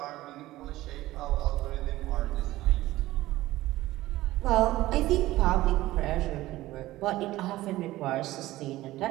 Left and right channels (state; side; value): quieter; left; 16.7 dB